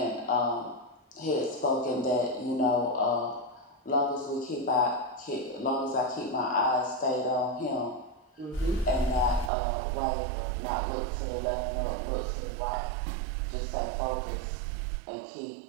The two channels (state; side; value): drops out; left; at 9.5 s